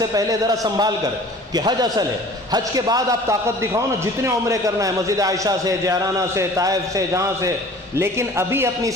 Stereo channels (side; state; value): both; normal; correlation 0.46